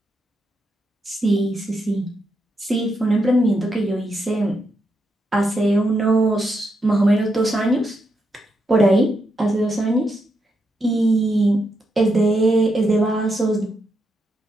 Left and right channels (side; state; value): both; normal; correlation 0.82